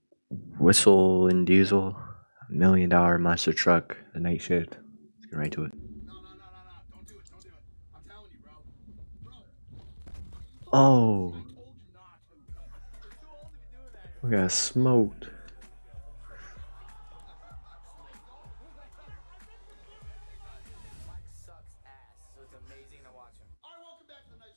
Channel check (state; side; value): inverted; both; correlation -1.00